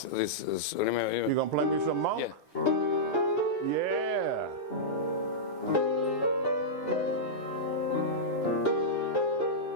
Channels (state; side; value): normal; both; correlation -0.11